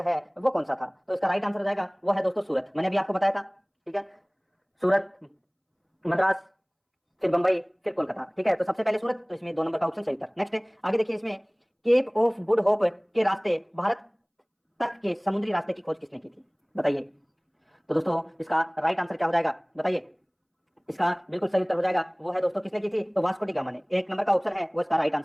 है वो कौन सा था? तो इसका राइट आंसर हो जाएगा वो है दोस्तों सूरत। मैंने अभी आपको बताया था। ठीक है, सूरत, मद्रास, फिर बंबई, फिर कोलकाता। ठीक है, तो सबसे पहले सूरत, तो इसमें 2 नंबर का ऑप्शन सही उत्तर। नेक्स्ट है, आगे देखिए इसमें केप ऑफ गुड होप के रास्ते भारत तक के समुद्री रास्ते की खोज किसने की थी? बताइए। तो दोस्तों इसका राइट आंसर क्या हो जाएगा, बताइए? इसका बिल्कुल सही उत्तर हो जाएगा वो है दोस्तों किसने की थी? तो वास्को डी गामा ने। 1 नंबर का ऑप्शन है वो इसका राइट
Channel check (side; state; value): both; identical; correlation 1.00